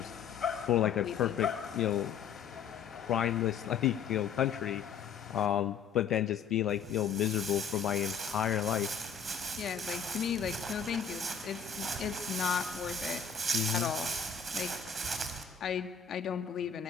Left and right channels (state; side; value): quieter; right; 6.6 dB